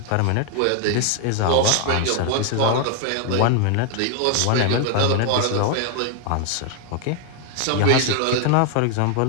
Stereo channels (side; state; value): both; different; correlation 0.00